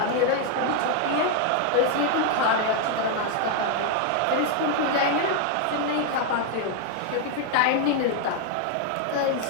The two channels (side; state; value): both; different; correlation 0.00